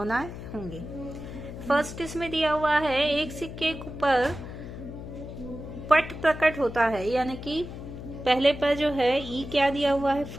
होंगी। फर्स्ट इसमें दिया हुआ है, एक सिक्के पर पट प्रकट होता है, यानी कि पहले पर जो है ई क्या दिया हुआ है?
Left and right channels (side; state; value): left; noise; hum, 10 dB below the sound